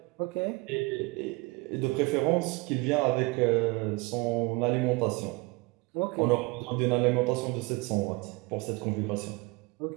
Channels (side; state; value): left; quieter; 25.3 dB